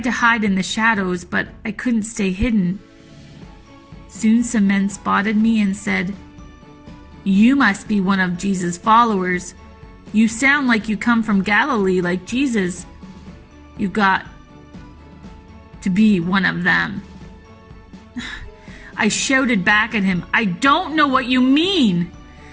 to hide in the shadows, but I couldn't stay hidden. Soon some men spotted me and said, "You must be one of Jesus' followers. You sound like you come from Galilee like Jesus. You got to be one of them." I shouted back at him, "I don't know what you mean.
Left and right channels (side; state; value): both; identical; correlation 1.00